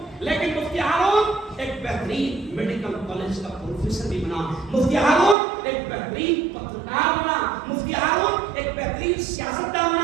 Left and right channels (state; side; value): drops out; left; at 5.4 s